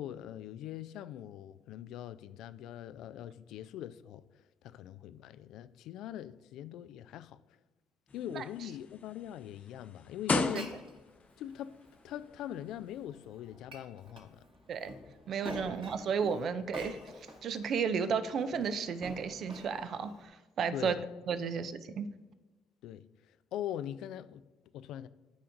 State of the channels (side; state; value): both; normal; correlation 0.62